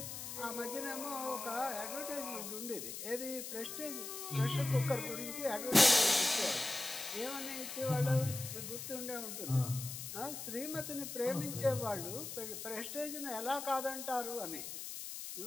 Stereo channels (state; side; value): noise; left; hiss, 7 dB below the sound